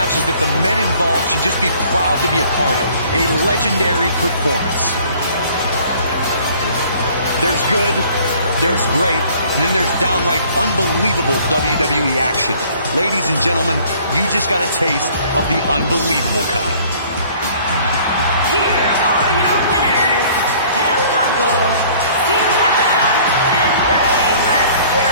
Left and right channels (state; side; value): inverted; both; correlation -0.54